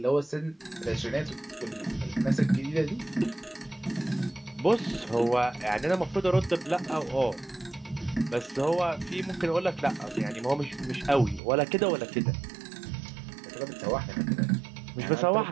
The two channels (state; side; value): drops out; left; at 11.4 s